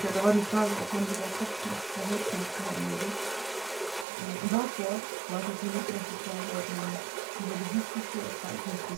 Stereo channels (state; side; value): drops out; left; at 4.0 s